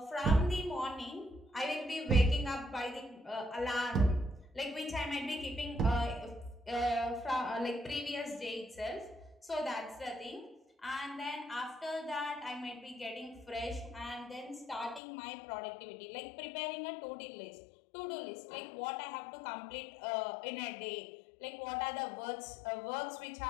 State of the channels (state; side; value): drops out; right; at 15.0 s